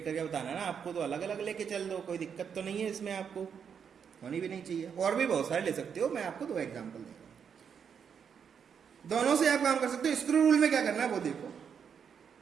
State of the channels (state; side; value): quieter; left; 7.2 dB